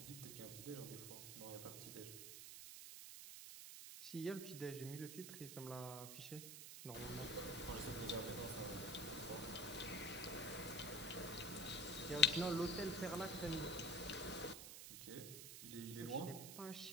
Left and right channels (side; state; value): right; noise; hiss, 8 dB below the sound